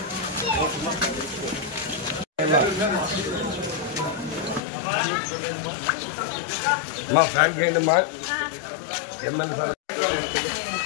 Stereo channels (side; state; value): right; drops out; at 4.6 s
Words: మా ఫ్యాన్ చేయండి మా ఎమ్మెల్యే సార్.